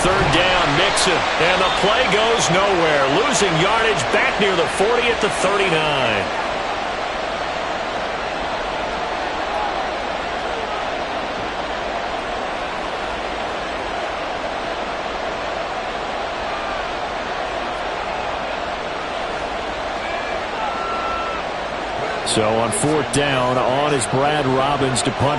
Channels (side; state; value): both; identical; correlation 1.00